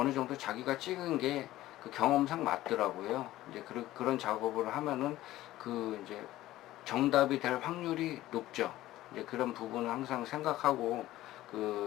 정도 자기가 찍은 게 경험상 맞더라고요. 이제 그런 작업을 하면은 이제 정답이 될 확률이 높죠. 이제 그런 부분을 항상 생각하고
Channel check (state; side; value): quieter; right; 15.5 dB